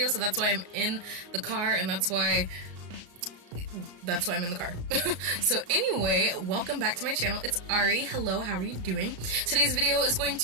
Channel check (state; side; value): late; left; 34 ms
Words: so that's why I'm in the car, and that's why I'm in the car. So anyway, welcome back to my channel. It's Ari. Hello, how are you doing? Today's video is going